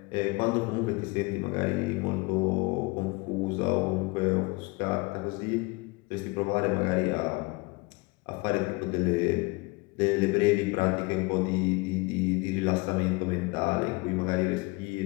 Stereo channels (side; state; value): right; quieter; 26.0 dB